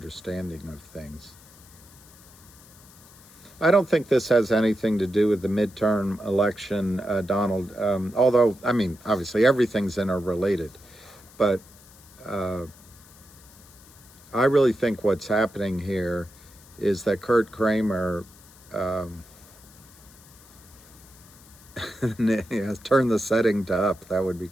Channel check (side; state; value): left; noise; hiss, 23 dB below the sound